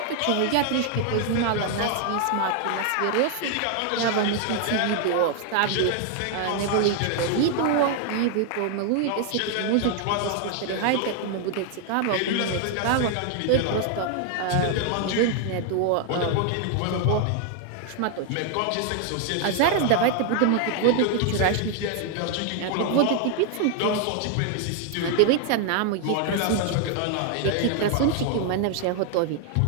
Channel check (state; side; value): different; both; correlation 0.00